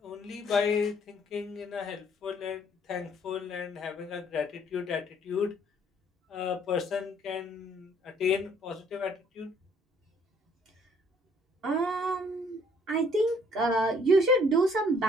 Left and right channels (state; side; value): normal; both; correlation 0.62